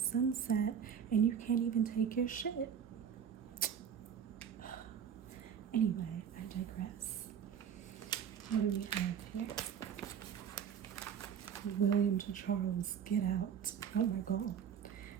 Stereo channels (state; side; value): quieter; left; 8.0 dB